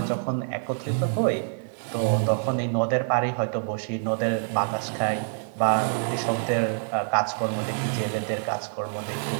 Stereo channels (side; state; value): left; silent; 61 dB below the other